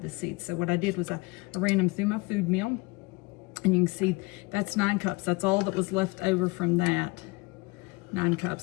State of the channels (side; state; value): right; quieter; 25.0 dB